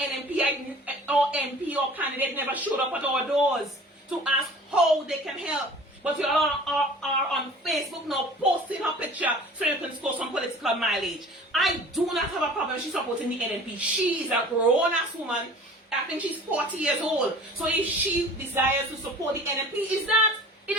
or MP or candidate never showed up at our doors to ask how they can help. But you all are on Facebook now posting her picture so you can score some political mileage. I do not have a problem she's supporting the NMP. She is a grown-ass woman. I think she's 40 years old. So if she desires to support the NMP, it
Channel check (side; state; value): both; normal; correlation 0.44